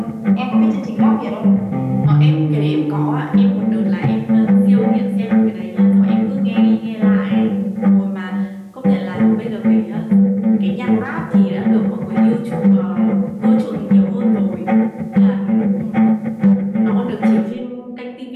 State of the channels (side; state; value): both; identical; correlation 1.00